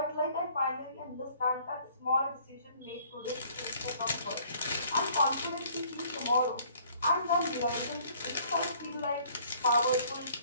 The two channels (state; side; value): inverted; both; correlation -0.58